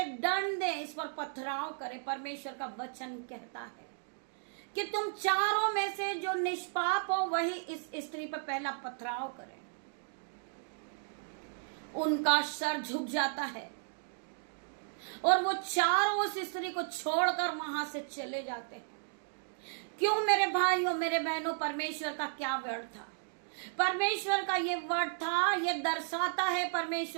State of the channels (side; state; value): left; silent; digital silence